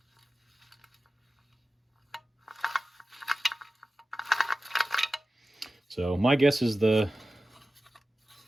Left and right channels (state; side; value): normal; both; correlation 0.95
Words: So my guess is the